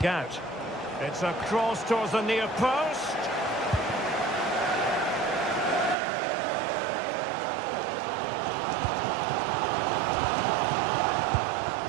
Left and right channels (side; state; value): left; drops out; at 6.0 s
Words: out? It's a cross towards the near post.